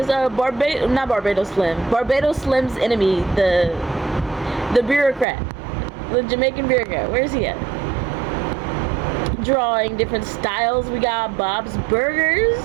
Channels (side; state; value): left; drops out; at 5.2 s